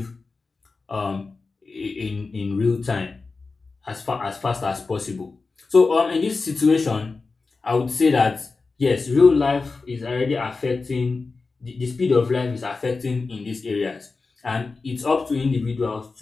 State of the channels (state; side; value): quieter; right; 4.1 dB